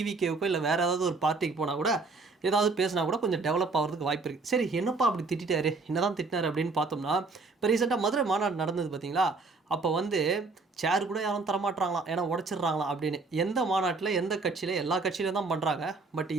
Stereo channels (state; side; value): quieter; left; 3.9 dB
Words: இல்ல வேற ஏதாவது ஒரு பார்ட்டிக்கு போனா கூட, ஏதாவது பேசினா கூட கொஞ்சம் டெவலப் ஆவறதுக்கு வாய்ப்பு இருக்கு. சரி என்னப்பா அப்படி திட்டிட்டாரு? என்னதான் திட்டினாரு அப்படின்னு பார்த்தோம்னா, இப்ப ரீசென்ட்டா மதுரை மாநாடு நடந்தது பார்த்தீங்களா? அப்ப வந்து சேர் கூட யாரும் தரமாட்றாங்களாம். ஏன்னா உடைச்சிடுறாங்களாம் அப்படின்னு. எந்த மாநாட்டுல, எந்த கட்சியில எல்லா கட்சியிலும் தான் பண்றாங்க. பட்